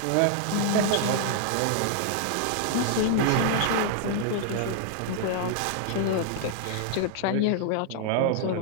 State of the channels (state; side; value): different; both; correlation 0.00